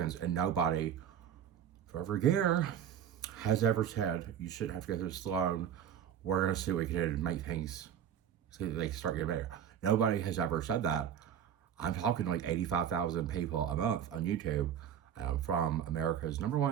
and nobody for over a year has ever said, you shouldn't have to go through this alone. We're going to see what we can do to make things so that they can start getting better. Nobody has ever said that. I'm talking to like 85,000 people a month on YouTube from America's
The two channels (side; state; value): left; quieter; 9.2 dB